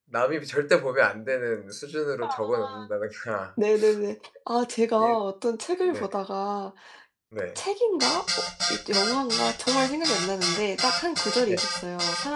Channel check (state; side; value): identical; both; correlation 1.00